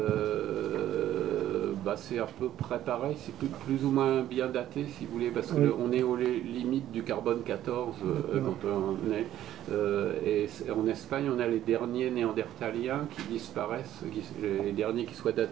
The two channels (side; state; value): left; quieter; 12.5 dB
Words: C'est à peu près pareil, c'est plus ou moins bien daté, si vous voulez, parce qu'on est aux limites du carbone 14 quand on est. Et en Espagne, on a les derniers néandertaliens qui disparaissent, les derniers qui soient